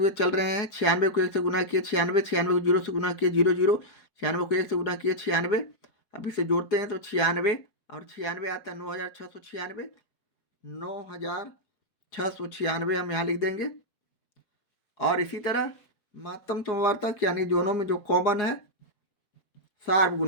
चल रहे हैं। 96 को 1 से गुना किए 96, 96 को 0 से गुना किए 0 0, 96 को 1 से गुना किए 96। अब इसे जोड़ते हैं तो 96 और 96 आता है 9696, 9696 हम यहाँ लिख देंगे। और इसी तरह महत्तम समावर्तक यानी दोनों में जो कॉमन है, सार्व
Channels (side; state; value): right; late; 4.8 ms